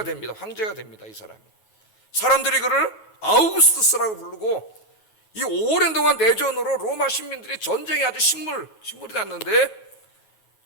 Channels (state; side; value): late; right; 9.3 ms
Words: 됩니다. 황제가 됩니다, 이 사람이. 사람들이 그를 아우구스투스라고 부르고, 이 오랜 동안 내전으로 로마 시민들이 전쟁에 아주 신물이 났는데